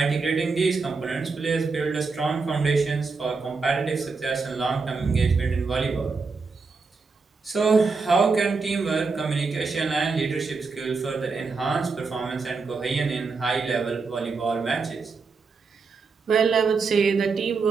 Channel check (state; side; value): quieter; left; 4.5 dB